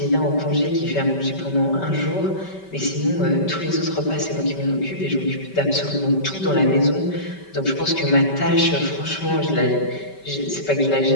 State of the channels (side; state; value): right; late; 5.2 ms